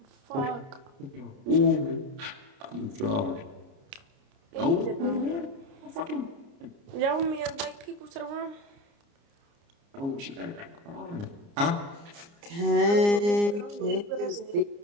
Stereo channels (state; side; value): late; left; 29 ms